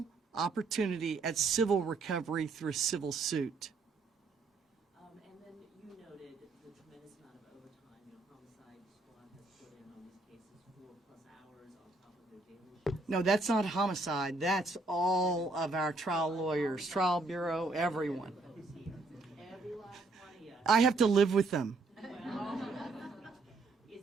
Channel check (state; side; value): quieter; left; 3.4 dB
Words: opportunity at civil recovery through a civil suit. And then you noted the tremendous amount of overtime, homicide squad has put in on these cases, 4+ hours on top of their daily shifts. No, that's not homicide. That's all of our trial lawyers, trial bureau, everyone. Every last one of you. I have to live with them. Is